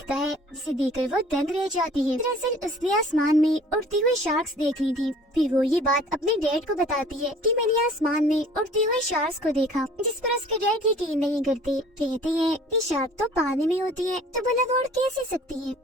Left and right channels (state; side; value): normal; both; correlation 0.50